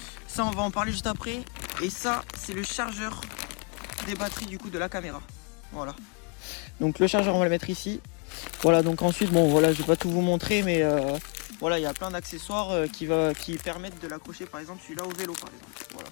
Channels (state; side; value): quieter; right; 36.3 dB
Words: ça on va en parler juste après. Et ça c'est le chargeur des batteries du coup de la caméra. Voilà, donc le chargeur on va le mettre ici. Voilà, donc ensuite, bon voilà, je vais pas tout vous montrer, mais voilà, il y a plein d'accessoires qui permettent de l'accrocher, par exemple celui-là au vélo, par exemple. Voilà.